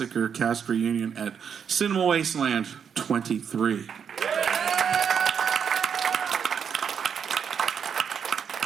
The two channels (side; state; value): left; quieter; 7.3 dB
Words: cast reunion at Cinema Wasteland 23.